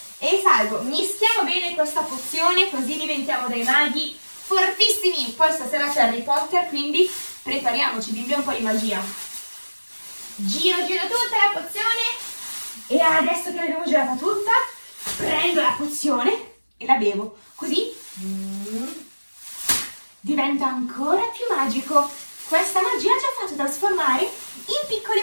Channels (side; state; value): both; inverted; correlation -1.00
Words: salgo. Mischiamo bene questa pozione così diventiamo dei maghi fortissimi. Poi stasera c'è Harry Potter, quindi prepariamoci, bimbi, un po' di magia. Giro tutta la pozione e adesso che l'abbiamo girata tutta, prendo la pozione e la bevo, così diventa ancora più magico. Questa magia ci ha fatto trasformare in